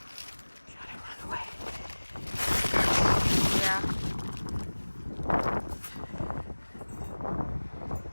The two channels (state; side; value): inverted; both; correlation -1.00